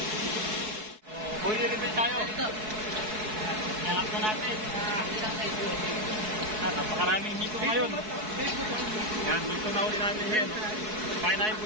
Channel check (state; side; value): late; left; 4.7 ms